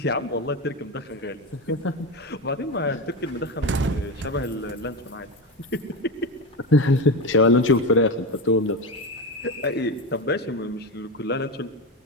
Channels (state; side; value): normal; both; correlation 0.18